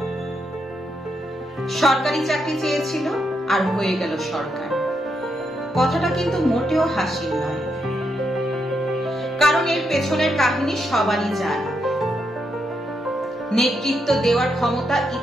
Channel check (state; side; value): normal; both; correlation 0.81